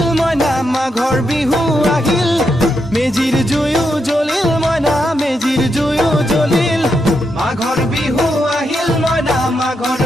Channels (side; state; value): both; normal; correlation 0.83